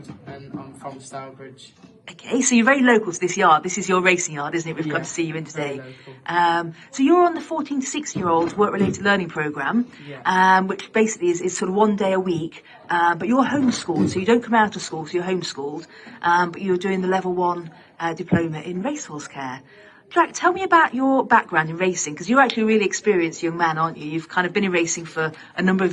and I'm from Stourbridge. Okay, so you're very local to this yard. This is your racing yard, isn't it? We've come to see you in today. So you're on the 14 to 16-year-olds work-related learning programme, which basically is sort of 1 day a week. But you're homeschooled, so you don't come out of school, so you're homeschooled. But you're doing the level 1 diploma in racehorse care. Jack, tell me about your background in racing, because you're actually a really experienced young man, aren't you? You've kind of been in racing for a number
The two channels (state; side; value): identical; both; correlation 1.00